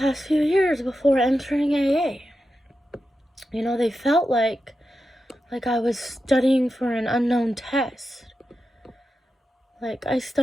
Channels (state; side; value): normal; both; correlation 0.89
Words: few years before entering AA. They felt like I was studying for an unknown test. Like I